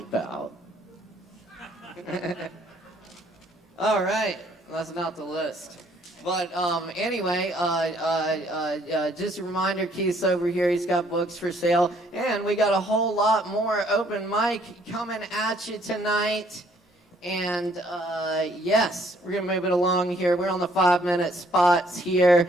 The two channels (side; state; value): both; normal; correlation 0.64